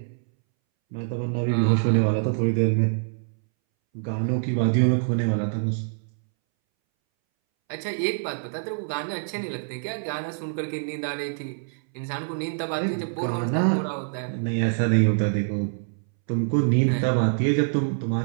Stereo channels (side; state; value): left; silent; 62 dB below the other